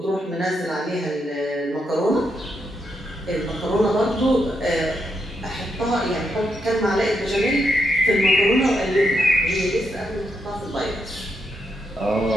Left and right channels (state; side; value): normal; both; correlation 0.81